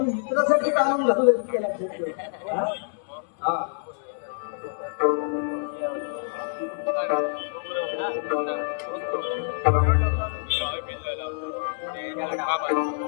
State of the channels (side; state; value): right; silent; digital silence